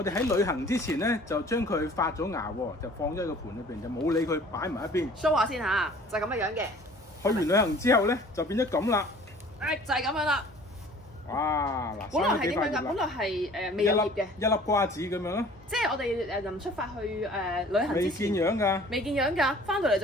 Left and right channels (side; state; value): both; normal; correlation 0.49